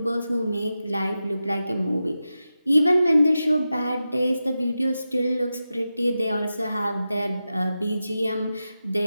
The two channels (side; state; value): both; inverted; correlation -0.91